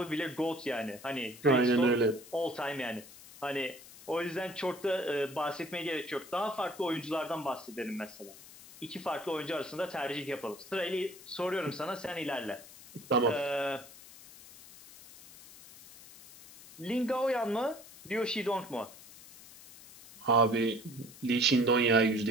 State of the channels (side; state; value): left; noise; hiss, 19 dB below the sound